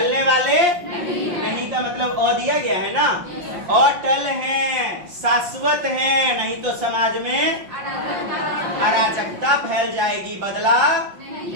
वाले नहीं का मतलब और दिया गया है ना। और टल हैं, शाश्वत हैं, नहीं तो समाज में अराजकता फैल जाएगी, बदला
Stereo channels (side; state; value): left; late; 5.6 ms